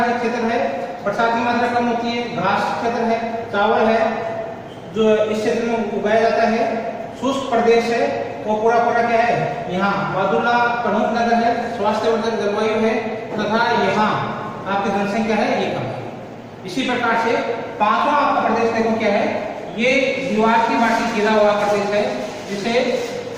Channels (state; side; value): identical; both; correlation 1.00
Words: क्षेत्र है, बरसात की मात्रा कम होती है, घास क्षेत्र है, चावल है जो इस क्षेत्र में उगाया जाता है। शुष्क प्रदेश है वो पूरा क्या है, यहाँ बादुला प्रमुख नगर है, स्वास्थ्यवर्धक जलवायु है तथा यहाँ आपकी जनसंख्या है ये कम है। इसी प्रकार से 5वां आपका प्रदेश देखो क्या है, ये दीवार की माटी घिरा हुआ प्रदेश है जिसे